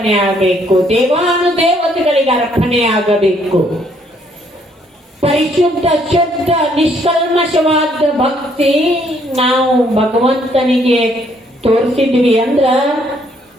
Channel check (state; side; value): normal; both; correlation 0.67